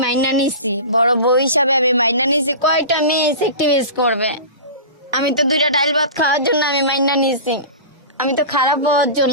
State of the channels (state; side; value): inverted; both; correlation -0.32